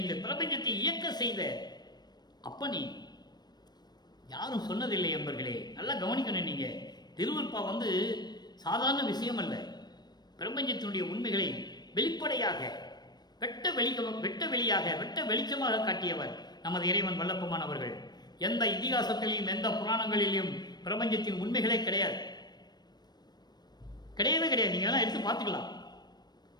இந்த பிரபஞ்சத்தை இயக்க செய்த அப்பனே. யாரும் சொன்னதில்லை என்பர்களே, நல்லா கவனிக்கணும். நீங்க திருவருட்பா சாதாரண விஷயம் அல்ல. பிரபஞ்சத்தினுடைய உண்மைகளை வெளிப்படையாக வெட்ட வெளியாக வெட்ட வெளிச்சமாக காட்டியவர் நமது இறைவன் வல்லப்பமானவர்கள். எந்த இதிகாசத்திலையும் எந்த புராணங்களிலும் பிரபஞ்சத்தின் உண்மைகளே கிடையாது, கிடையவே கிடையாது. நீங்க எல்லாம் எடுத்து பார்த்துக்கலாம்.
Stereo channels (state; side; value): late; right; 0.20 ms